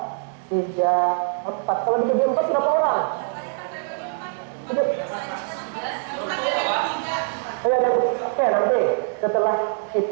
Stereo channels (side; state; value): left; silent; digital silence